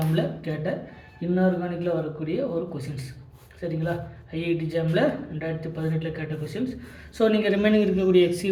கேட்ட இன்ஆர்கானிக்கில் வரக்கூடிய ஒரு கொஷின்ஸ். சரிங்களா, IIT ஜாமில் 2018 கேட்ட கொஷின்ஸ். ஸோ நீங்கள் ரிமைனிங் இருக்கக்கூடிய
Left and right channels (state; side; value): identical; both; correlation 1.00